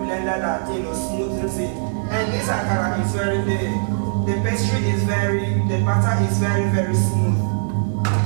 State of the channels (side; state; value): left; silent; digital silence